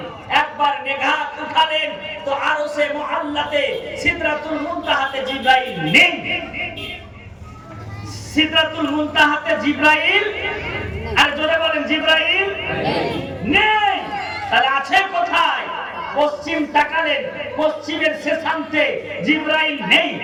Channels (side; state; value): both; identical; correlation 1.00